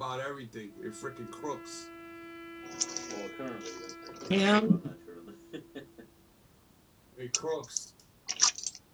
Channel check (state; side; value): identical; both; correlation 1.00